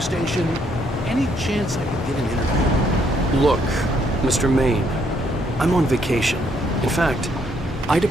Any chance I could get an interview? Look, Mr. Maine, I'm on vacation. In fact, I'd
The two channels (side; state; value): both; normal; correlation 0.70